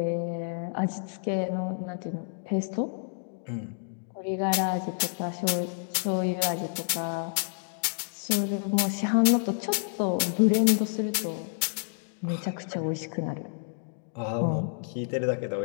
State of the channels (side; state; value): right; silent; 59 dB below the other